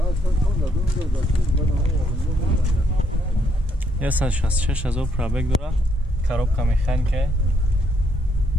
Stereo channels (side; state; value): both; normal; correlation 0.73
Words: Я 166,000 пробег дора. Коробка механика.